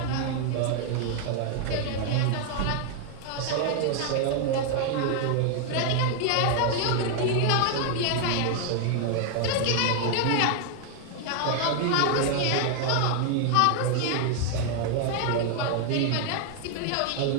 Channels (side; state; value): both; different; correlation 0.00